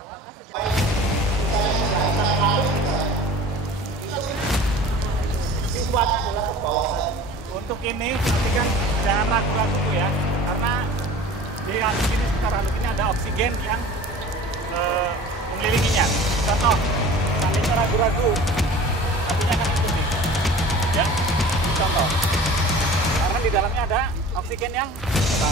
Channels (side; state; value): both; normal; correlation 0.42